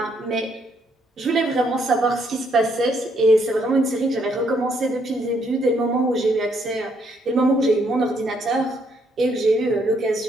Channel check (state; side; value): normal; both; correlation 0.72